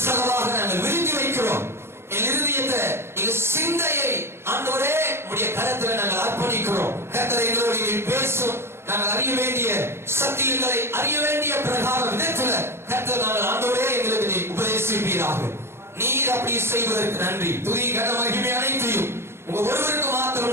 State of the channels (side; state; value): left; late; 0.12 ms